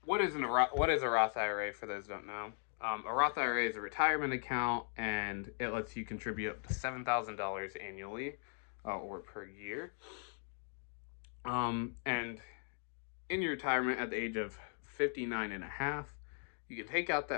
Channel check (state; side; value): silent; right; 52 dB below the other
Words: what is a Roth IRA for those who don't know? A Roth IRA is a retirement account, and it lets you contribute up to $7,000 annually or per year. And in your retirement at the age of 59 and a half, you can take out